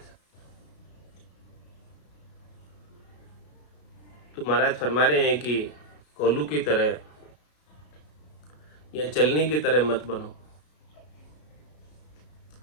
तो महाराज फरमा रहे हैं कि कोल्हू की तरह या चलनी की तरह मत बनो।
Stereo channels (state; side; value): late; right; 33 ms